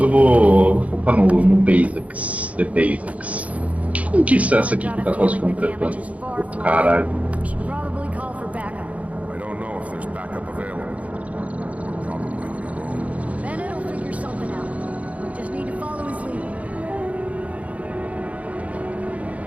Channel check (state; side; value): late; left; 0.067 ms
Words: vou focar no Basics. The Basics. Que conquista é essa aqui que tá quase completando? Caralho. Should probably call for backup. I don't know if there's backup available. You're probably on your own. Bennett will figure something out. We just need to follow his lead.